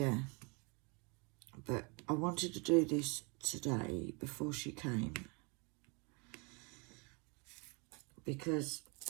but I wanted to do this today before she came, because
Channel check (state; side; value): quieter; left; 31.5 dB